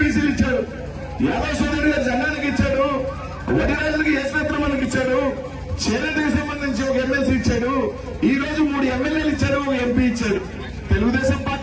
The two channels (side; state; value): both; identical; correlation 1.00